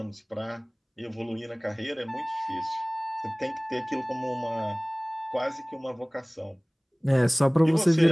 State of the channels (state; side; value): identical; both; correlation 1.00